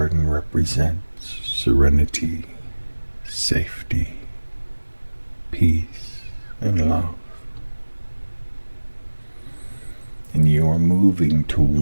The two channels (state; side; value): inverted; both; correlation -1.00